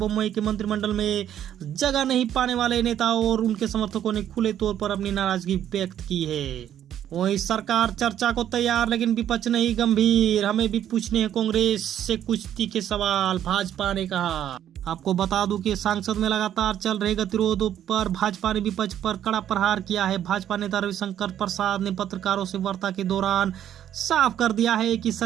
के मंत्रिमंडल में जगह नहीं पाने वाले नेताओं और उनके समर्थकों ने खुले तौर पर अपनी नाराजगी व्यक्त की है। वही सरकार चर्चा को तैयार लेकिन विपक्ष नहीं गंभीर, हमें भी पूछने हैं कांग्रेस से कुछ तीखे सवाल, भाजपा ने कहा। आपको बता दूं कि संसद में लगातार चल रहे गतिरोधों पर भाजपा ने विपक्ष पर कड़ा प्रहार किया है। भाजपा नेता रविशंकर प्रसाद ने पत्रकारों से वार्ता के दौरान साफ कर दिया है कि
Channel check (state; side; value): quieter; left; 10.6 dB